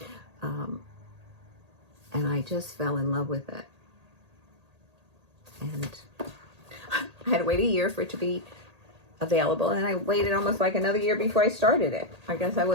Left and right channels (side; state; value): left; late; 1.8 ms